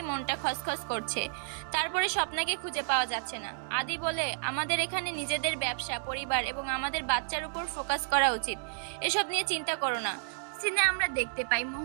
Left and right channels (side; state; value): left; silent; digital silence